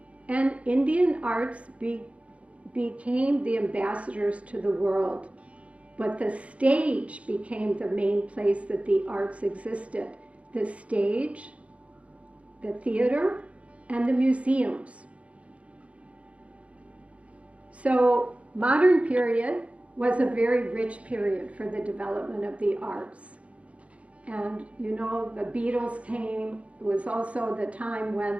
and Indian arts became the ambassadors to the world. But the stage became the main place that the arts existed. The stage, the theater, and the museums. So modern period was a very rich period for the development of the arts. And you know, the Beatles came. It was also the time when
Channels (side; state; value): left; late; 0.064 ms